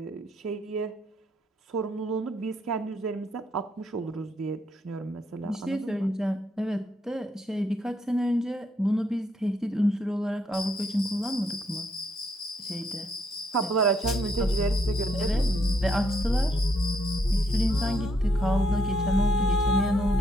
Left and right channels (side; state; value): both; normal; correlation 0.73